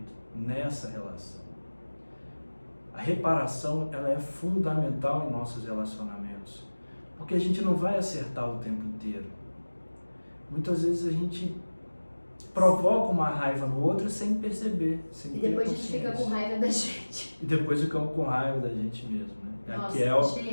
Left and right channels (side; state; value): both; inverted; correlation -1.00